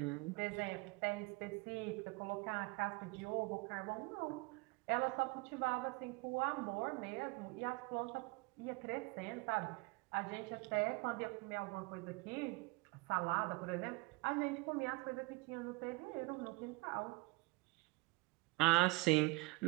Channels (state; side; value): quieter; left; 25.2 dB